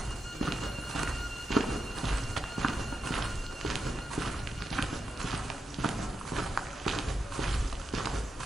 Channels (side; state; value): both; normal; correlation 0.86